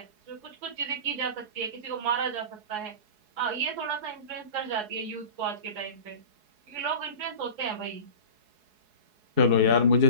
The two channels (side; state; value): left; late; 4.7 ms